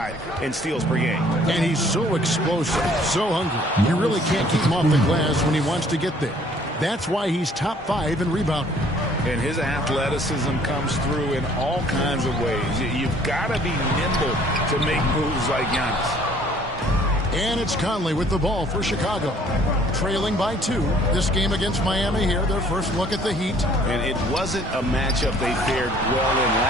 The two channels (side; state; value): both; normal; correlation 0.58